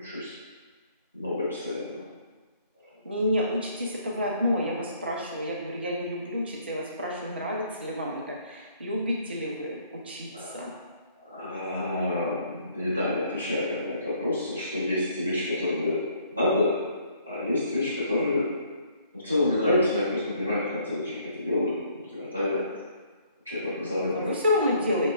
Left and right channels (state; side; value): inverted; both; correlation -0.63